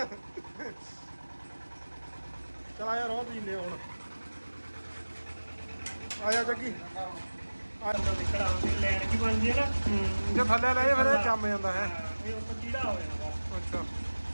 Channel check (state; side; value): inverted; both; correlation -1.00